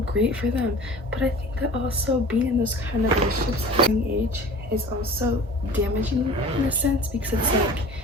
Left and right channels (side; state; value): both; normal; correlation 0.41